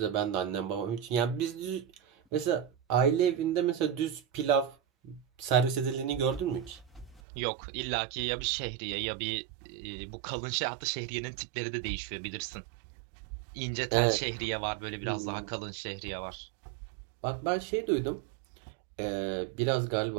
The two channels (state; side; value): drops out; left; at 7.2 s